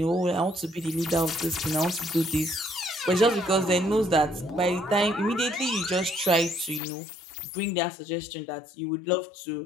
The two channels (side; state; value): right; drops out; at 6.8 s